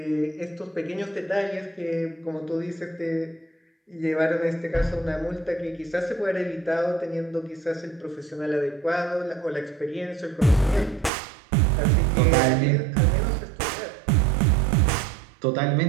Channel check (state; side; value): drops out; left; at 11.1 s